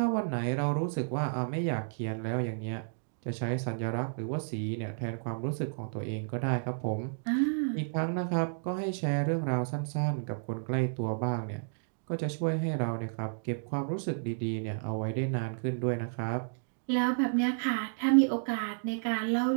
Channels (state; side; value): silent; left; digital silence